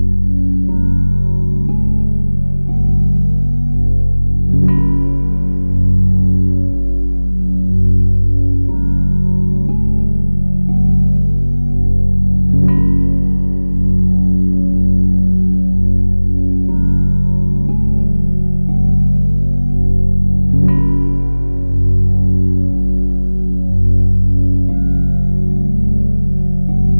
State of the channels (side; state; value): both; inverted; correlation -1.00